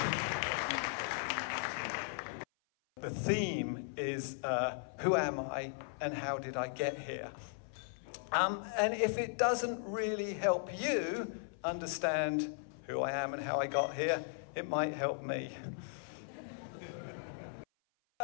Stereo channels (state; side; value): silent; right; 53 dB below the other